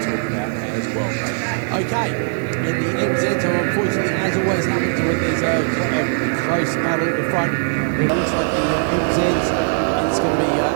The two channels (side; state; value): left; silent; digital silence